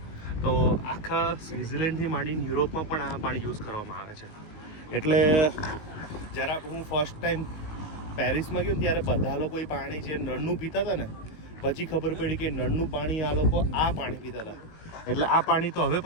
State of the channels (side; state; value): right; late; 19 ms